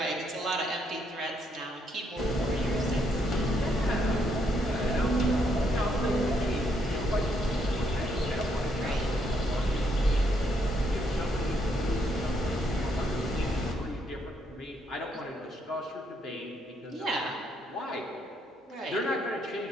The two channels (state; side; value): normal; both; correlation 0.74